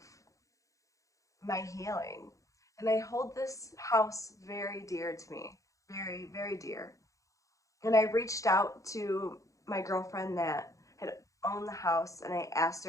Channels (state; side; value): late; right; 0.16 ms